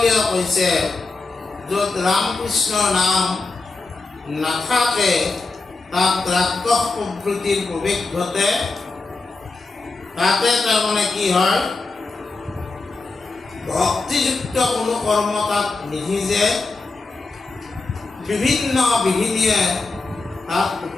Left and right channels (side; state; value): right; quieter; 3.7 dB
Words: কৈছে, য'ত ৰামকৃষ্ণৰ নাম নাথাকে তাত ৰাক্ষস প্ৰবৃত্তিৰ প্ৰৱেশ ঘটে। তাতে তাৰমানে কি হয়? ভক্তিযুক্ত কোনো কৰ্ম তাত নিসিজে, বিভিন্ন বিঘিনিয়ে তাত